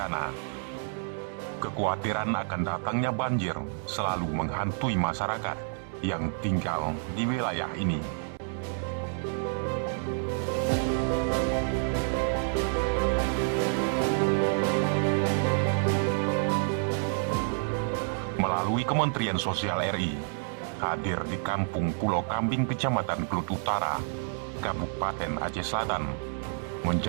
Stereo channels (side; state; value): left; silent; 59 dB below the other